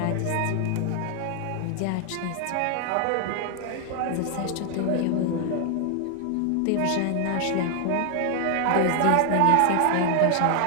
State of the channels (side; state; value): both; different; correlation 0.00